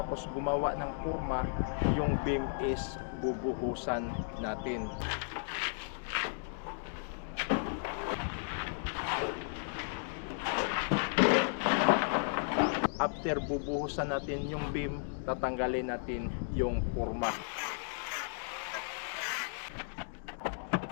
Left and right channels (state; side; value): silent; right; digital silence